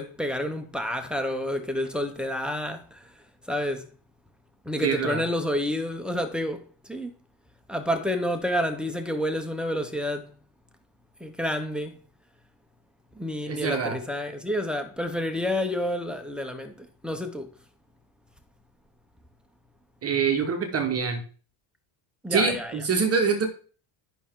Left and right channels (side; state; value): both; normal; correlation 0.44